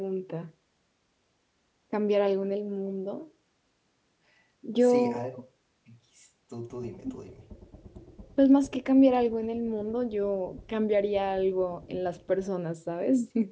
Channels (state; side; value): identical; both; correlation 1.00